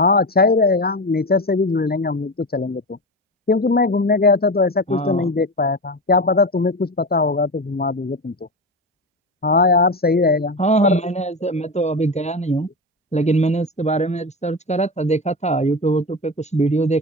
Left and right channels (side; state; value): both; normal; correlation 0.21